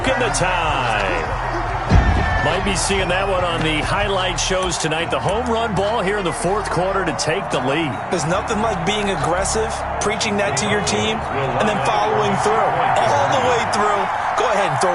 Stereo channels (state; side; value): identical; both; correlation 1.00